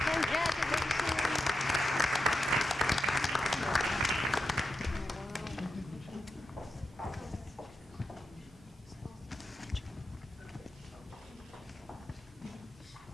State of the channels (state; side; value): normal; both; correlation 0.89